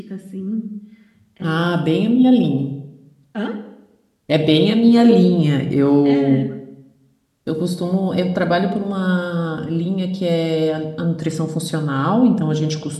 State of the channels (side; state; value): both; identical; correlation 1.00